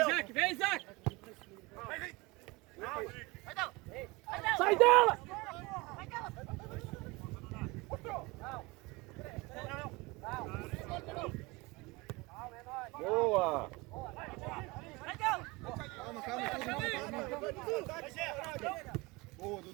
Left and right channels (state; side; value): quieter; left; 24.2 dB